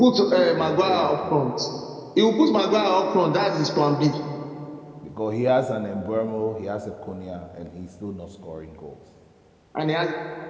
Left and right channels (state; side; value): identical; both; correlation 1.00